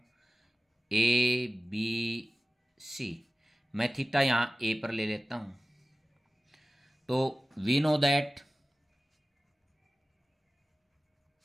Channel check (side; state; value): both; normal; correlation 0.96